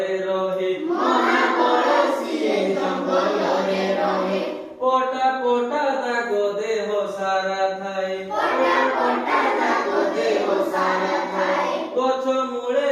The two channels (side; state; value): both; identical; correlation 1.00